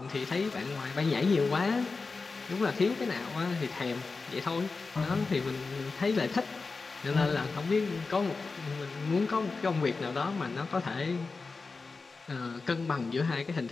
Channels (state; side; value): quieter; right; 4.2 dB